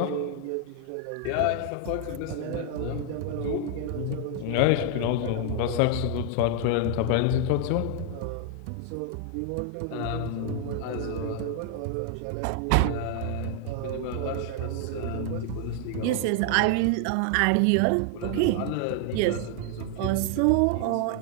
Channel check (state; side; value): different; both; correlation 0.00